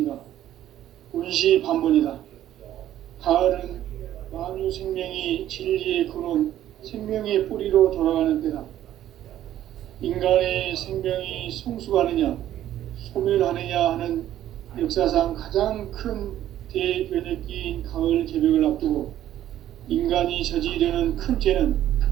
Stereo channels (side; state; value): left; quieter; 12.3 dB